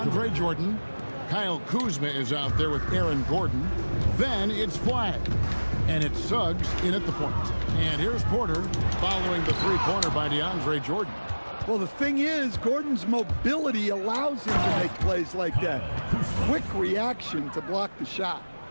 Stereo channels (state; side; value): inverted; both; correlation -1.00